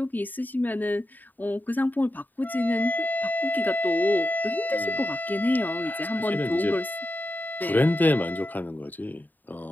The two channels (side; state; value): right; late; 0.087 ms